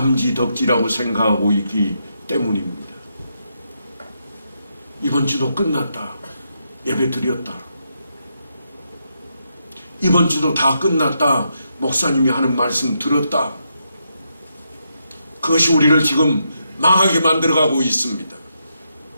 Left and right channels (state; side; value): inverted; both; correlation -0.81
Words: 생각하고 있기 때문입니다. 이번 주도 끝났다. 예배 드렸다. 이번 주도 다 끝났다. 목사님이 하는 말씀 들었다. 그것이 우리를 지금 망하게 만들어가고 있습니다.